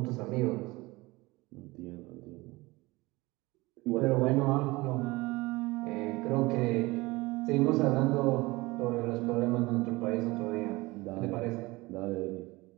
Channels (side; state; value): left; quieter; 21.9 dB